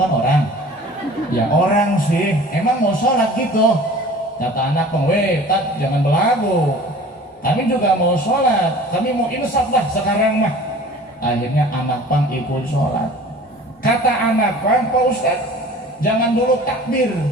orang? Ya orang sih, emang mau sholat gitu. Kata anak pang, weh Tat jangan belagu, kami juga mau sholat, kami mau insaf lah sekarang mah. Akhirnya anak pang ikut sholat. Kata anak pang, Pak Ustaz jangan dulu takbir.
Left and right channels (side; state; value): both; normal; correlation 0.44